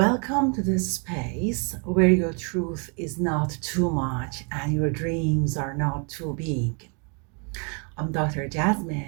to this space where your truth is not too much and your dreams are not too big. I'm Dr.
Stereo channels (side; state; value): left; quieter; 37.3 dB